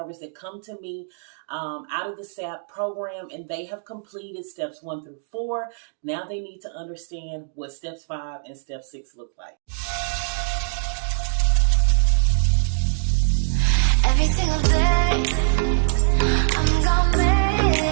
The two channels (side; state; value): left; silent; digital silence